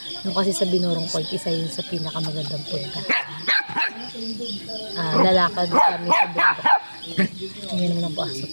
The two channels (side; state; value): both; inverted; correlation -1.00